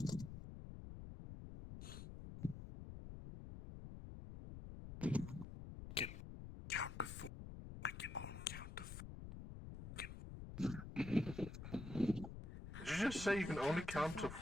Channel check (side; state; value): left; noise; rumble, 9 dB below the sound